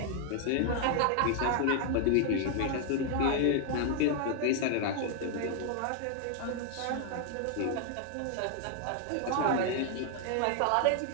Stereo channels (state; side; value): different; both; correlation 0.00